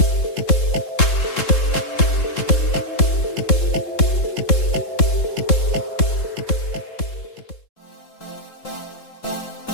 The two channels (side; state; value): right; late; 3.7 ms